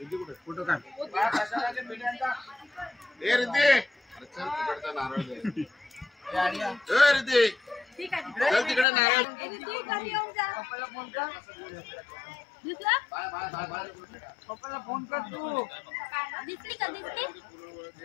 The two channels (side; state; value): right; drops out; at 8.8 s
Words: फोटो काढ. तिकडे नारळ पप्पाला फोन कर तू. दिसली का दिसली?